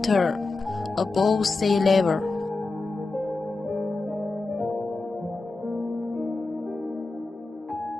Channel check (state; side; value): quieter; right; 3.5 dB